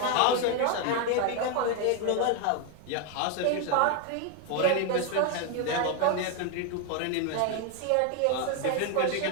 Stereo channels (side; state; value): both; different; correlation 0.01